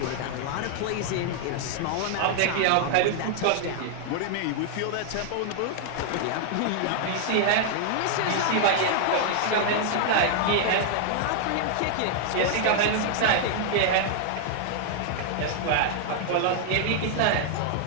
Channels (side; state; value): both; different; correlation 0.00